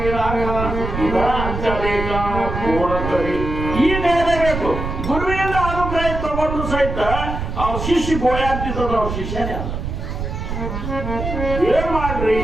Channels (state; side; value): noise; right; rumble, 5 dB below the sound